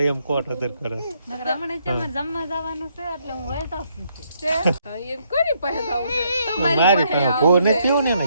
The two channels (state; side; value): inverted; both; correlation -0.73